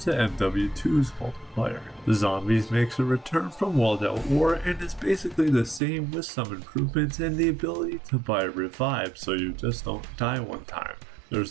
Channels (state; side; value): drops out; left; at 5.8 s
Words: MW2's multiplayer. The Zombies makes a return from World at War and is basically the same with some improvements and the ability to buy revive so you just don't die one time.